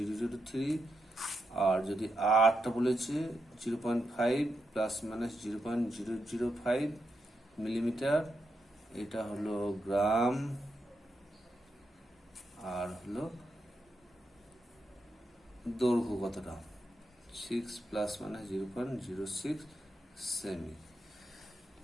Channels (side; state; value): both; normal; correlation 0.84